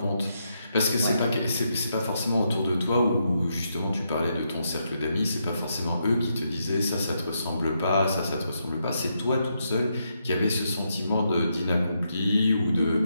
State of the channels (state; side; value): inverted; both; correlation -0.80